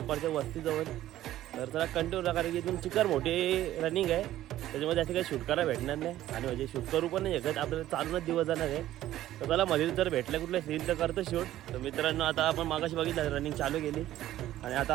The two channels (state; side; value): quieter; left; 13.7 dB